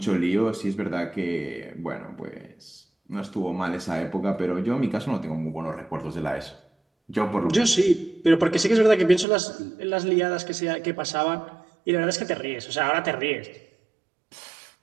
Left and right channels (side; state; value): left; drops out; at 9.2 s